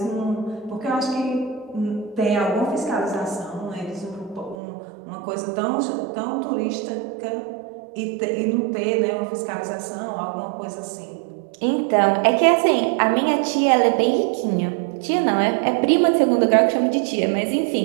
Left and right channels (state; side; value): drops out; left; at 4.5 s